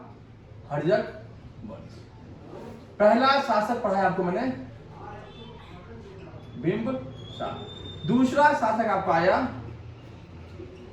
हर्यक वंश। पहला शासक पढ़ा है आपको मैंने बिंबिसार। दूसरा शासक आपका आया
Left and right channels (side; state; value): both; identical; correlation 1.00